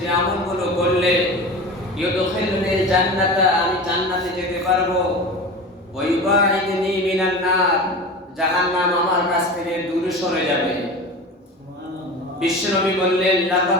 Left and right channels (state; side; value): normal; both; correlation 0.32